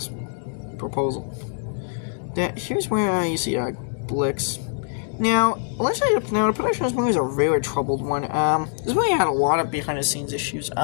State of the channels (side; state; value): right; silent; digital silence